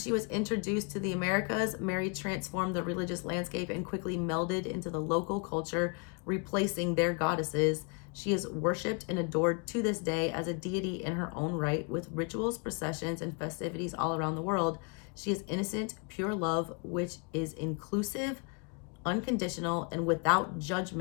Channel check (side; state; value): right; quieter; 35.0 dB